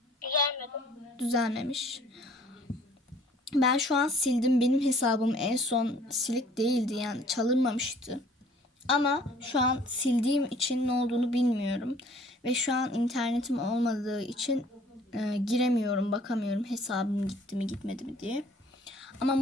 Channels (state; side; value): normal; both; correlation 0.55